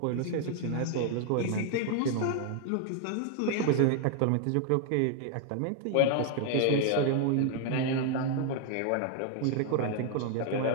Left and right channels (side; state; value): both; different; correlation 0.00